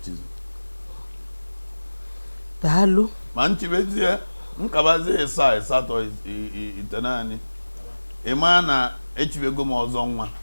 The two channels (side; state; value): both; inverted; correlation -1.00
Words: daalụ ma nchibezie nkabazie 7 8 ite naanị ịma na echibego m ọzọ nwa